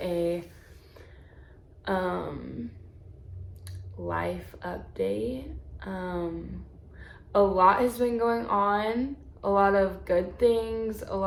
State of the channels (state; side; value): identical; both; correlation 1.00